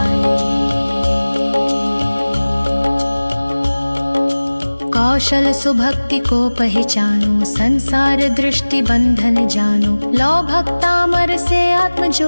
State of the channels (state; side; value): inverted; both; correlation -1.00